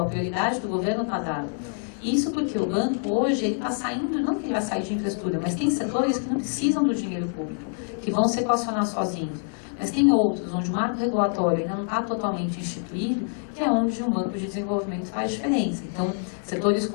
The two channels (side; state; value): right; silent; 61 dB below the other